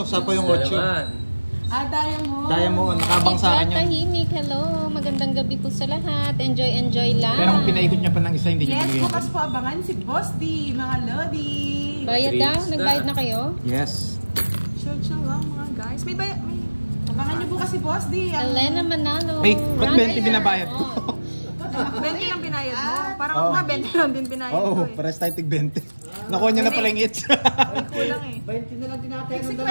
Sapa yung 8. Naman. Diamond, nakabang sa akin yun. Tahimik, hello. Magandang gabi po sa lahat. Enjoy lang. Pero kung pinaikot niya pa ng isa, hindi niya Yes, binigay yung bukas po abangan si Boss D, mga Lodi. Bayad daw? Treats na. Nagbayad na kayo? Yes. Search na lang mga guys. May Abangan niyo bukas si Boss D. Elena Manalo. Ay, ba't Ryan 20 binabayad ko? 20 lang binayad mo. Parang Oo. ako nga 20 lang din binayad Oo, ko eh. pares tayo tig 20. Nakuha niya na pala yung hits. May kulang eh. 20 na lang tinatay ng 60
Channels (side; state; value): both; inverted; correlation -1.00